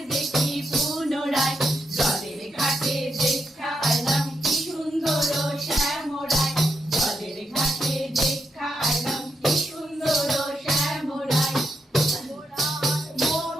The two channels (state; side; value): normal; both; correlation 0.82